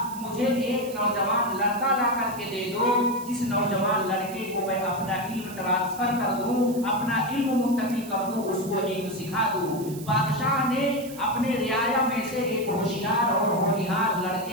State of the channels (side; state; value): right; noise; hiss, 16 dB below the sound